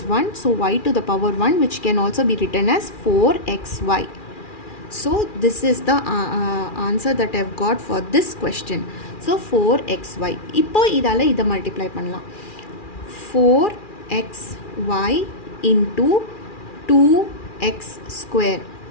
1. So y to the power 1 which can also be written as 4xy. So this is the answer that I have got for this question. So 4xy. இப்போ இதால் இதை மல்டிப்ளை பண்ணலாம். 4xy into 2x².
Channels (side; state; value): right; late; 2.4 ms